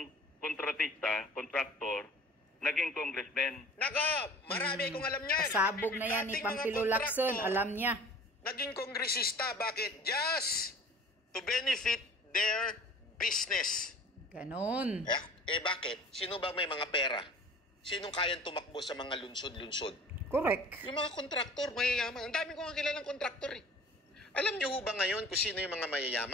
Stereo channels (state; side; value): normal; both; correlation 0.45